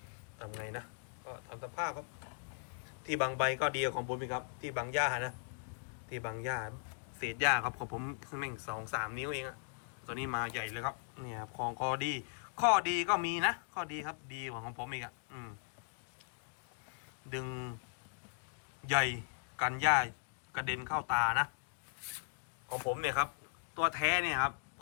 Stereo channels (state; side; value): silent; right; digital silence